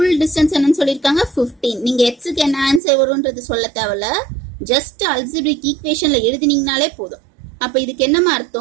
டிஸ்டன்ஸ் என்னன்னு சொல்லிருக்காங்க, 15. நீங்க x க்கு என்ன ஆன்சர் வரும்ன்றது சொல்ல தேவையில்ல, ஜஸ்ட் அல்ஜிப்ரிக் ஈக்குவேஷன்ல எழுதினீங்கனாலே போதும். அப்ப இதுக்கு என்னமா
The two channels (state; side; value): drops out; left; at 2.8 s